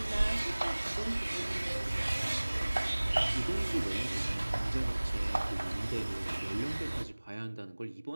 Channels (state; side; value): inverted; both; correlation -1.00